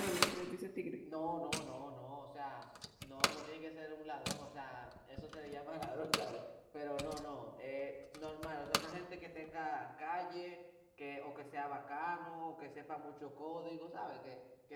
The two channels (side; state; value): both; identical; correlation 1.00